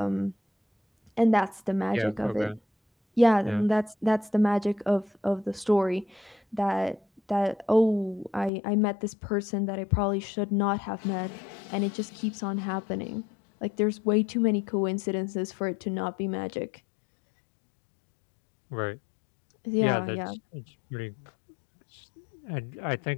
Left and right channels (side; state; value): right; drops out; at 8.5 s